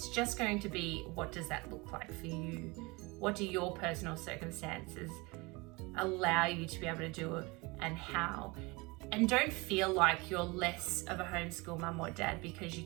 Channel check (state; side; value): quieter; left; 25.4 dB